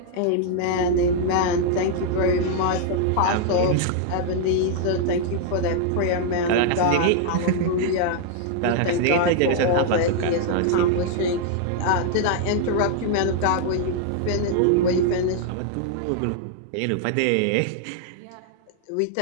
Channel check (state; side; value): different; both; correlation 0.00